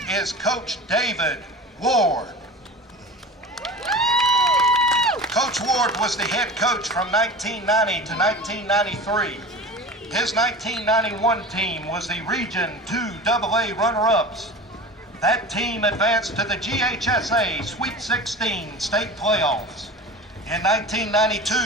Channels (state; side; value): normal; both; correlation 0.34